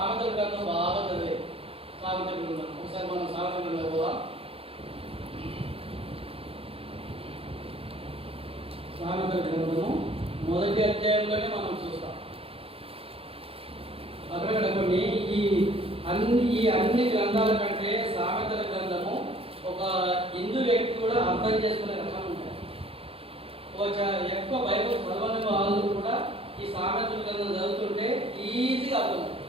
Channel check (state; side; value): late; left; 0.27 ms